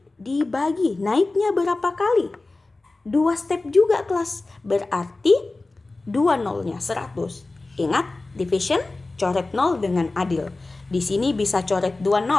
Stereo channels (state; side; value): quieter; right; 3.2 dB